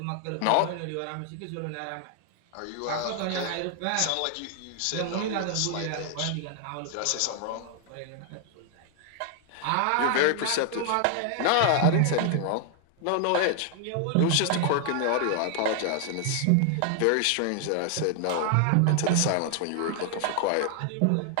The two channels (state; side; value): different; both; correlation 0.00